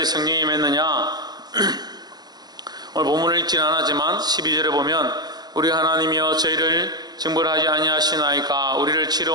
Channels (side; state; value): left; late; 0.20 ms